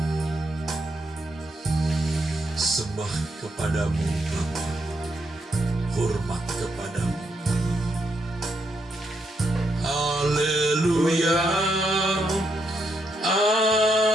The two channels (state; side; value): normal; both; correlation 0.79